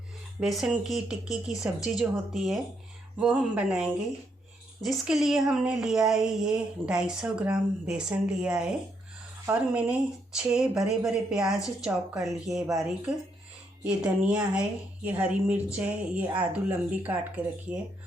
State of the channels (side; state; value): both; normal; correlation 0.76